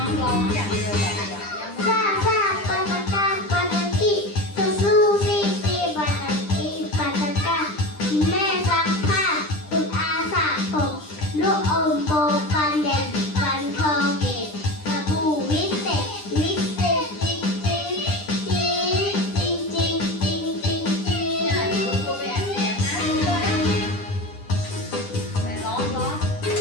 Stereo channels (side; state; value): right; late; 10 ms